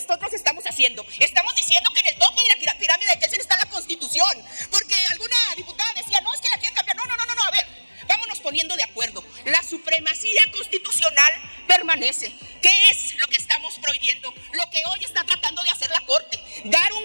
estamos haciendo? Estamos diciendo que en el tope de la pirámide de Kelsen está la Constitución. Porque alguna diputada decía, no, es que la quieren cambiar. No, a ver, vámonos poniendo de acuerdo. La supremacía constitucional permanece. ¿Qué es lo que estamos prohibiendo? Lo que hoy está tratando de hacer la Corte. Dar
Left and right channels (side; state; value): both; inverted; correlation -1.00